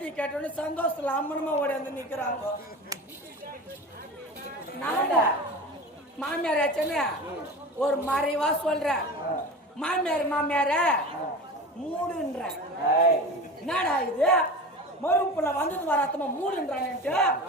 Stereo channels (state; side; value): normal; both; correlation 0.32